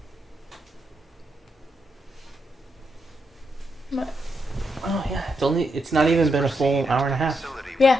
Oh yeah, it's not even been a full hour and a half. Facility with Yeah.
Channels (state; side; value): normal; both; correlation 0.82